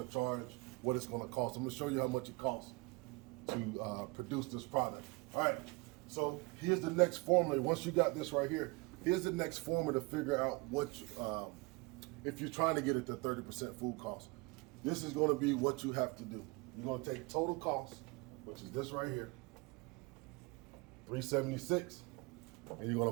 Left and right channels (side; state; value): left; quieter; 26.8 dB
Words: to charge what it's going to cost. I'm going to show you how much it costs to produce this product. All right, so here's the next formula. Once you got this right here, here's the next formula to figure out what, if you're trying to get it to 30% food cost. This is going to be what you have to do. You're going to take total cost which is this right here, $3.76, and you're gonna